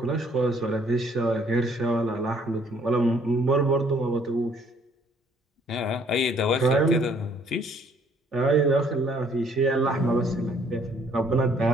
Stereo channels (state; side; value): normal; both; correlation 0.62